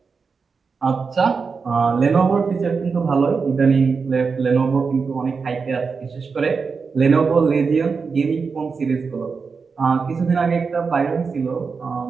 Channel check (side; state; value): left; quieter; 5.1 dB